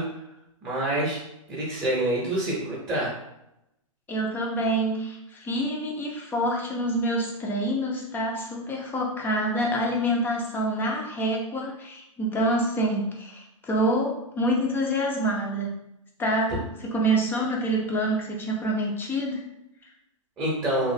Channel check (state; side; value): normal; both; correlation 0.19